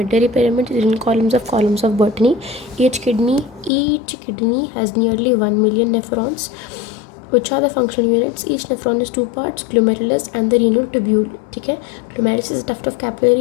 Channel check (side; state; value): right; drops out; at 3.7 s